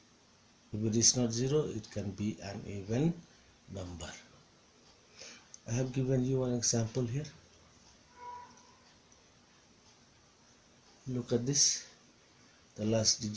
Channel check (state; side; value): identical; both; correlation 1.00